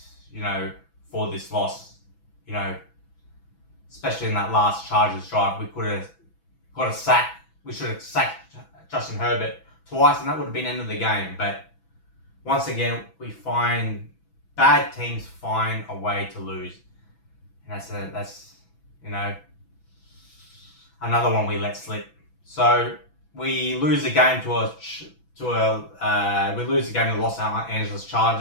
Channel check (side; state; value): right; late; 6.0 ms